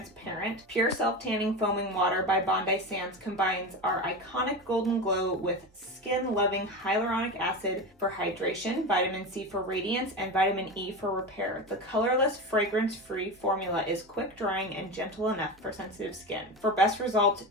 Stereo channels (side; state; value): both; normal; correlation 0.23